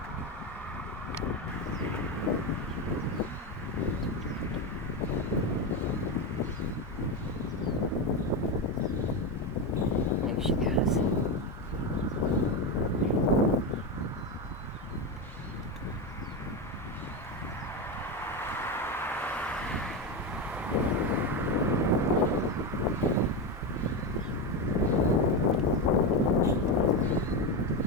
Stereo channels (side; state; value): both; normal; correlation 0.14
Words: There she goes.